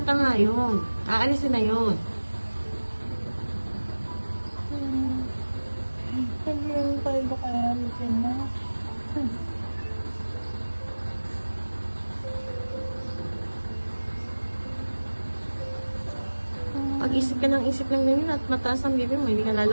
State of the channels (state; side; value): inverted; both; correlation -1.00